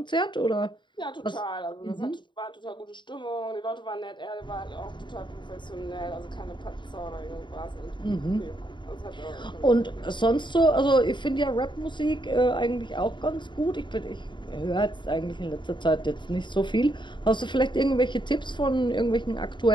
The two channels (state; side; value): late; right; 0.23 ms